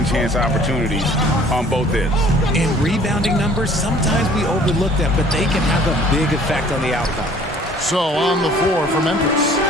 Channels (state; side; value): normal; both; correlation 0.54